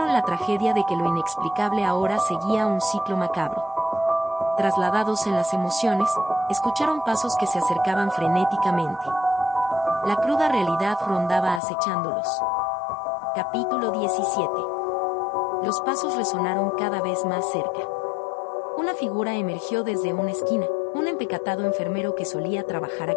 la tragedia de que lo inexplicable ahora seguía un ciclo macabro. Trasladados en las emociones, escucharon pasos que se acercaban frenéticamente. La cruda realidad rondaba acechándolos. Capítulo 17. Los pasos resonaron cada vez más cerca. Una figura emergió desde una esquina, un empecatado enfermero que solía trabajar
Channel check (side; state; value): right; drops out; at 11.6 s